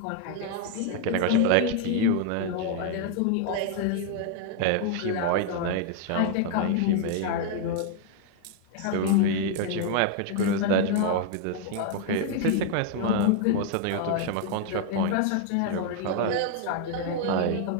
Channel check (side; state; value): both; different; correlation 0.00